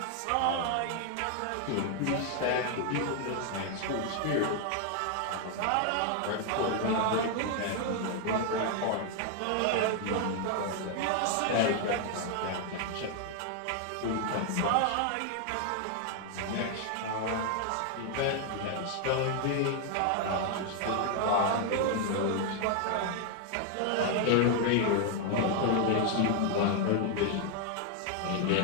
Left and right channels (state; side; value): different; both; correlation 0.00